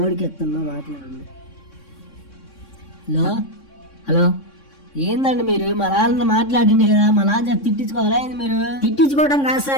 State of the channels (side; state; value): right; late; 3.6 ms